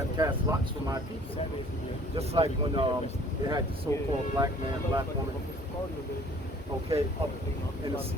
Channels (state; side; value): normal; both; correlation 0.53